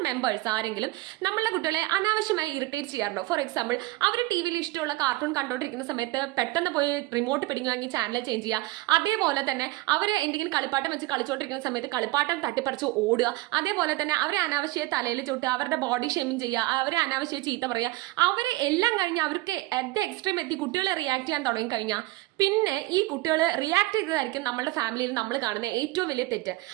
members ആരെങ്കിലും നമ്മളുടെ കുട്ടികളെ അനാവശ്യമായി ഇറിറ്റേറ്റ് ചെയ്യാറുണ്ടോ? ഫോർ എക്സാമ്പിൾ, അവർ ടി വിയിൽ ഇഷ്ടമുള്ള കാർട്ടൂൺ കണ്ടോണ്ടിരിക്കുന്ന സമയത്ത് പെട്ടെന്ന് പോയി റിമോട്ട് പിടിങ്ങി വാങ്ങി ചാനൽ ചേഞ്ച് ചെയ്യുക. അതേപോലെ തന്നെ അവർ എന്തെങ്കിലും കളിപ്പാട്ടം വെച്ച് കളിച്ചുകൊണ്ടിരിക്കുന്ന സമയത്ത് കളിപ്പാട്ടം തട്ടിപ്പറിച്ച് ഓടുക. അതേപോലെ തന്നെ അവരെ അനാവശ്യ തലയിൽ ചുട്ടുക, അവരുടെ ബോഡി ഷേമിങ് ചെയ്യുക, അവരെ അനാവശ്യ ചീത്ത പറയുക. അവരെ എല്ലാം കഴിഞ്ഞ് അവർക്ക് അറ്റ് ദ എക്സ്ട്രീം എത്തി കുട്ടികളെ റിയാക്ട് ചെയ്യാൻ തുടങ്ങി കഴിഞ്ഞാൽ പിന്നെ ഈ കുട്ടികൾ റിയാക്ട് ചെയ്തതായിരിക്കും നമ്മുടെ ഫാമിലിയിൽ നമ്മൾ കാണുന്ന ഏറ്റവും വലിയ തെറ്റ്.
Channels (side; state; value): left; quieter; 20.0 dB